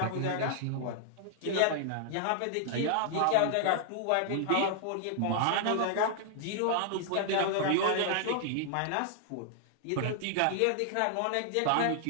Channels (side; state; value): both; different; correlation -0.01